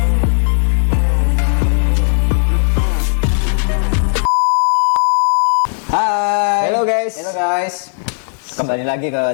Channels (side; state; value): right; silent; digital silence